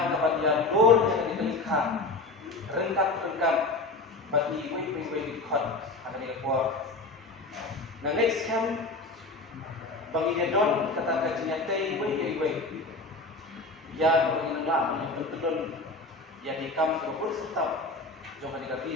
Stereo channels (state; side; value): quieter; right; 3.2 dB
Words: kapan ya dor yang dikelikkan rengkat bat ni wei di khot akan dikepor nah next camp bagi don kata kajinya tei wei ya bagi nang yang pentedon ya hikam terupur serta jangan diganti